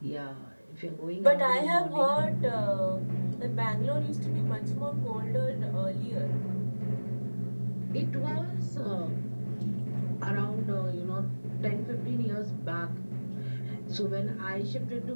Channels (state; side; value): inverted; both; correlation -1.00